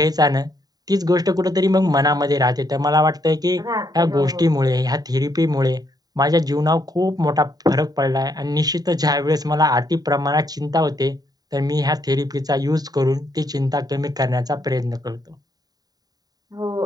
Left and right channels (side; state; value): left; late; 0.18 ms